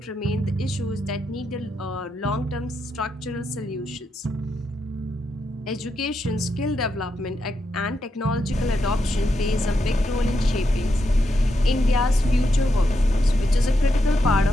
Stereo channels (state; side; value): normal; both; correlation 0.83